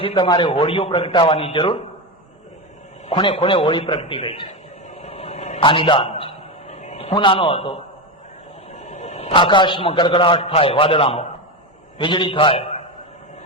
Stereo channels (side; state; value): both; normal; correlation 0.15